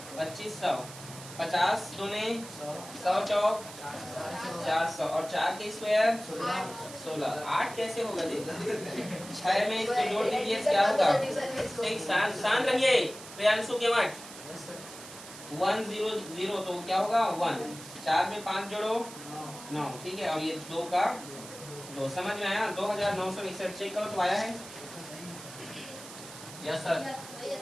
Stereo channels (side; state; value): right; noise; hiss, 14 dB below the sound